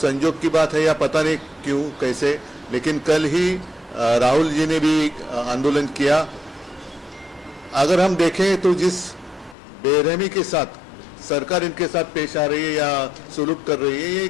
की बात है या पता नहीं क्यों कैसे, लेकिन कल ही राहुल जी ने भी आंदोलन किया। अगर हम देखें तो जिस बेरहमी के साथ सरकार इनके साथ पेश आ रही है या सुलूक कर रही है, ये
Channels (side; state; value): right; drops out; at 9.6 s